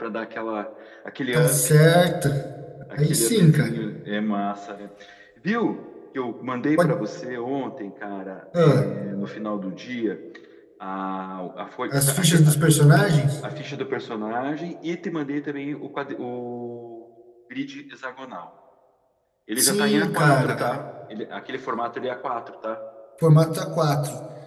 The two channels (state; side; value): identical; both; correlation 1.00